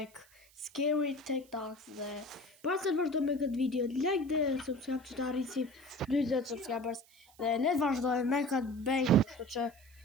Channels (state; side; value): noise; right; hiss, 28 dB below the sound